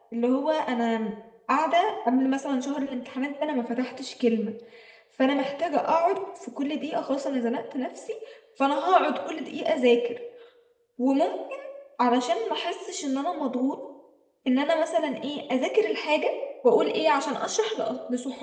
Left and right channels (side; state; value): both; identical; correlation 1.00